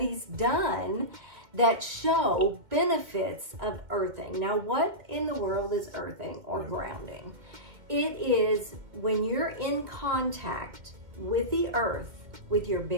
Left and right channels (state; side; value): late; left; 2.3 ms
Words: done that show benefits of earthing. Now, what in the world is earthing or grounding? It is when you're in contact with the earth with your